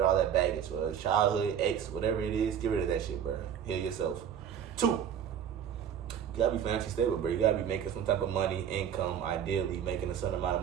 all that baggage, whether it's childhood, ex, whatever it is. Get rid of that shit, bro. Heal yourself. 2, you gotta be financially stable, bro. You gotta be making some type of money, income, ideally making a certain amount of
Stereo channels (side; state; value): left; quieter; 8.9 dB